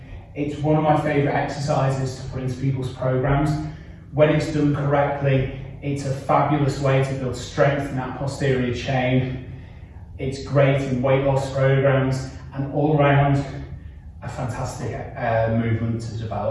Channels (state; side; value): identical; both; correlation 1.00